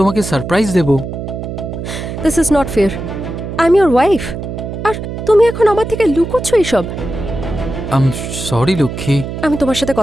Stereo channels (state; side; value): noise; right; hum, 7 dB below the sound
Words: সারপ্রাইজ দেব। This is not fair. I am your wife, আর তুমি এখন আমার থেকে লুকোচ্ছ এইসব। সরি লক্ষ্মী। আমি তোমার সাথে